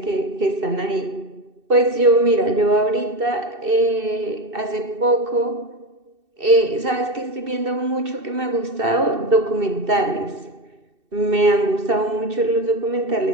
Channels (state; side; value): late; left; 2.7 ms